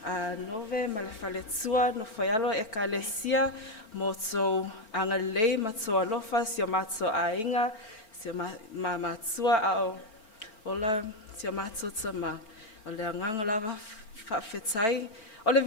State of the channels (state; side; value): late; right; 4.4 ms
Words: Nove ma le whaletua no whaialo e ka lesia mo tō angalei ma tō alofa si o mato a inga, si o matua a o ola si o mato Tamā. O le anganga lava whawhetai O le